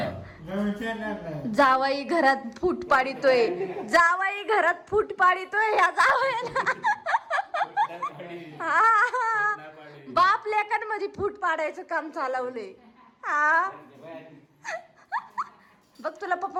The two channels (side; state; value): both; identical; correlation 1.00